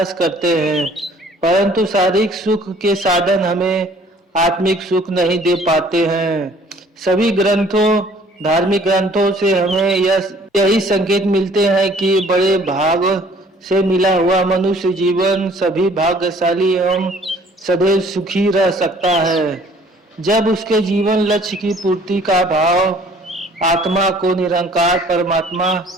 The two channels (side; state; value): both; normal; correlation 0.55